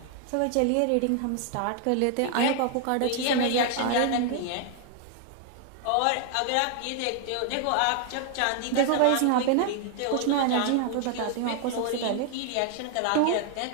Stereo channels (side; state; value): both; different; correlation 0.00